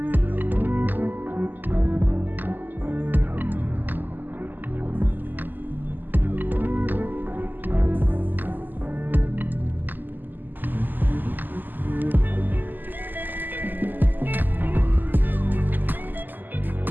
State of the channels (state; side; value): late; left; 0.088 ms